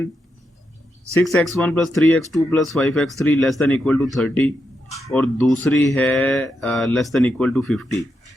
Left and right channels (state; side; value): normal; both; correlation 0.84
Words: 6x1 plus 3x2 plus 5x3 less than equal to 30 और दूसरी है लेस देन इक्वल टू 50।